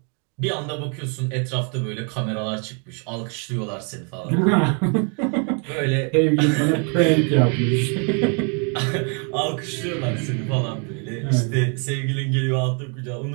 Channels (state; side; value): quieter; left; 38.4 dB